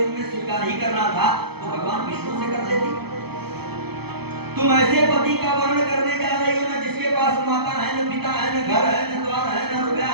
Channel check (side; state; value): left; late; 0.97 ms